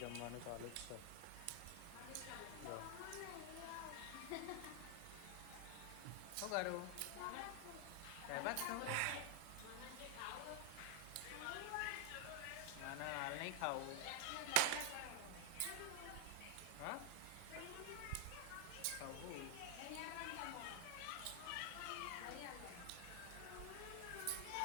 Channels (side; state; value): both; different; correlation 0.00